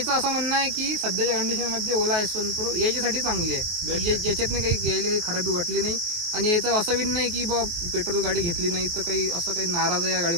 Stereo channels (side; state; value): left; late; 23 ms